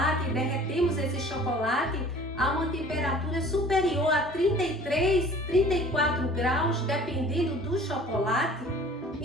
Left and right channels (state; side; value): normal; both; correlation 0.48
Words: e derretemos esse chocolate a uma temperatura superior a 33, 34 graus, dependendo do chocolate,